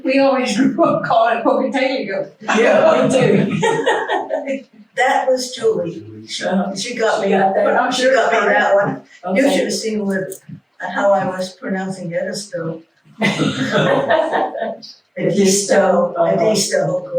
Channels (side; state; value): both; identical; correlation 1.00